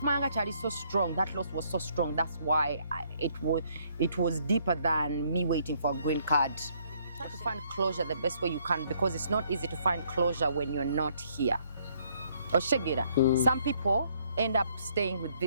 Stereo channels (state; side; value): inverted; both; correlation -0.68